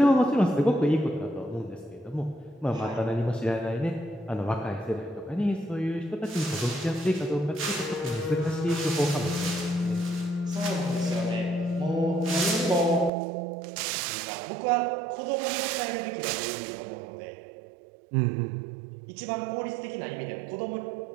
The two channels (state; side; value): drops out; left; at 13.1 s